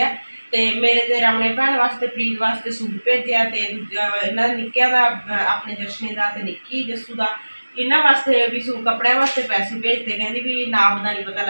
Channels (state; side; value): inverted; both; correlation -1.00